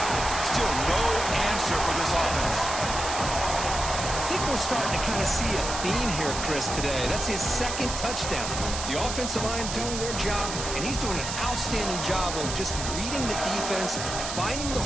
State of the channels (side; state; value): right; noise; hiss, 5 dB below the sound